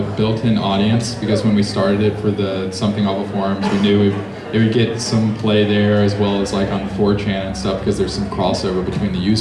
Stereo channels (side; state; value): both; identical; correlation 1.00